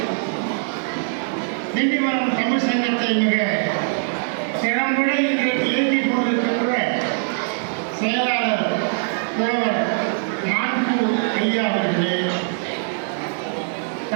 திண்டிவனம் தமிழ் சங்கத்தை மிக திறம்பட இன்றைக்கு இயக்கிக் கொண்டிருக்கின்ற செயலாளர் புலவர் மான்பூர் ஐயா அவர்களே,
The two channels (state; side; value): silent; left; 64 dB below the other